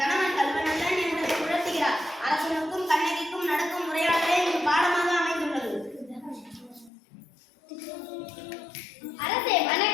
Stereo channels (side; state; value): right; drops out; at 6.9 s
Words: கணவன் கல்வனல்லன் என்பதை உணர்த்துகிறார். அரசனுக்கும் கண்ணகிக்கும் நடக்கும் உரையாடலே இது பாடமாக அமைந்துள்ளது. அரசே